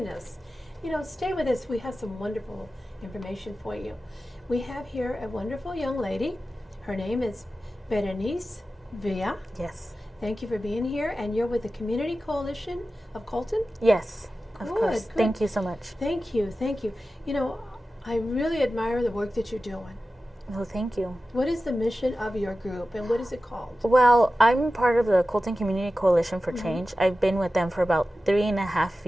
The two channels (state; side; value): normal; both; correlation 0.94